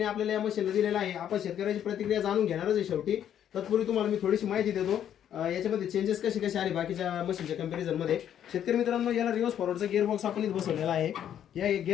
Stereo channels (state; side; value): quieter; right; 10.0 dB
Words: आपल्याला या मशीनला दिलेला आहे. आपण शेतकऱ्याची प्रतिक्रिया जाणून घेणारच आहे शेवटी. तत्पूर्वी तुम्हाला मी थोडीशी माहिती देतो याच्यामध्ये चेंजेस कसे कसे आले बाकीच्या मशीनच्या कंपॅरिझन मध्ये. शेतकरी मित्रांनो, याला रिव्हर्स फॉरवर्डचा गिअर बॉक्स आपण इथे बसवलेला आहे. या